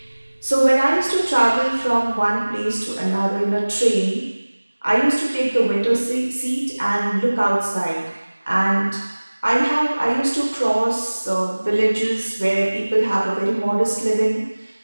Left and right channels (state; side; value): inverted; both; correlation -1.00